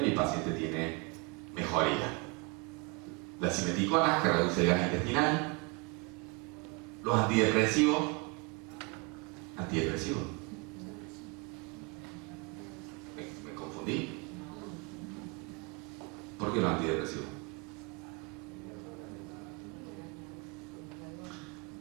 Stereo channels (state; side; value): quieter; left; 31.1 dB